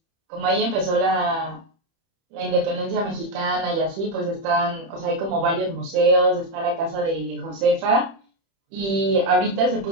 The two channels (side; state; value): left; late; 30 ms